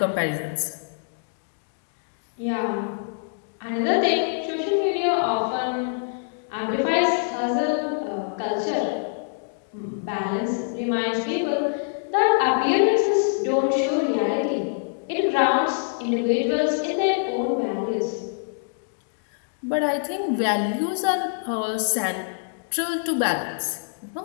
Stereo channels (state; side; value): silent; right; digital silence